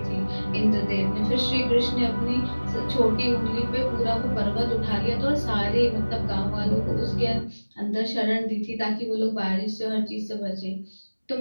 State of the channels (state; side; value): inverted; both; correlation -1.00